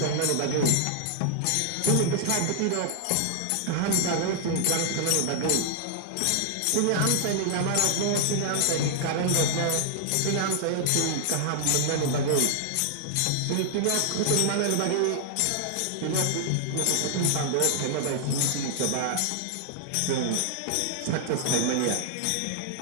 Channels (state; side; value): different; both; correlation 0.00